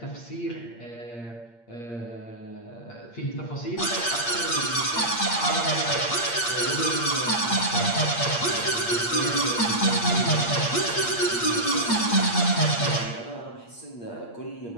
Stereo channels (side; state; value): right; late; 8.6 ms